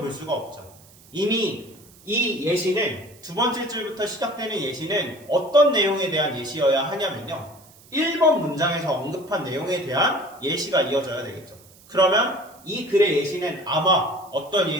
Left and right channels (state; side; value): noise; right; hiss, 25 dB below the sound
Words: 수가 없죠. 이미 이 예시는 두 번째 줄부터 시작되는 예시는 어떤 내용에 대한 예시여야 하냐면요. 1번 문장에서 언급한 내용에 대한 예시가 이어져야 되겠죠. 그러면 이 글의 예시는 아마 어떤